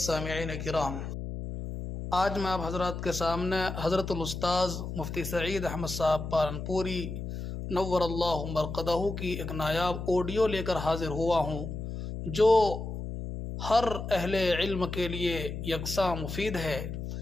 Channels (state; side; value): noise; left; hum, 6 dB below the sound